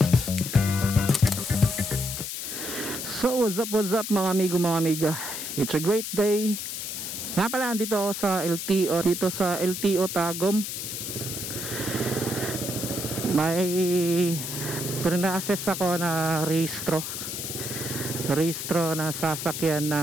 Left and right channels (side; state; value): left; noise; hiss, 5 dB below the sound